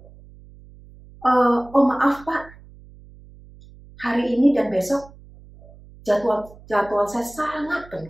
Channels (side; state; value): right; noise; hum, 22 dB below the sound